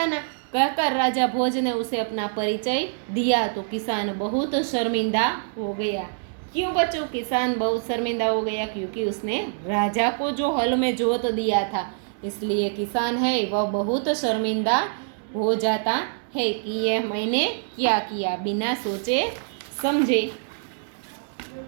कहकर राजा भोज ने उसे अपना परिचय दिया तो किसान बहुत शर्मिंदा हो गया। क्यों बच्चों किसान बहुत शर्मिंदा हो गया? क्योंकि उसने राजा को जो हल में जोत दिया था, इसलिए किसान है वह बहुत शर्मिंदा हो जाता है कि यह मैंने क्या किया, बिना सोचे समझे।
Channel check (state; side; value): silent; left; 61 dB below the other